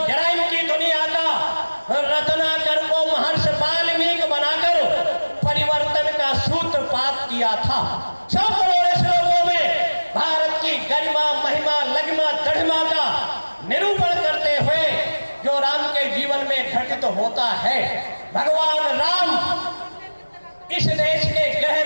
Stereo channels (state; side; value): inverted; both; correlation -1.00